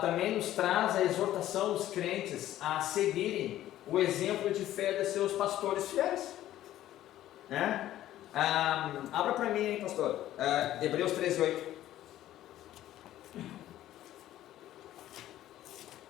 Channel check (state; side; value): quieter; right; 13.4 dB